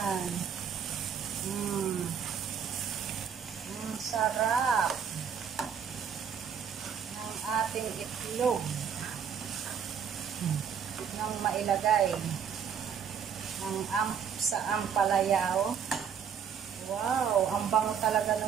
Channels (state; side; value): quieter; left; 7.5 dB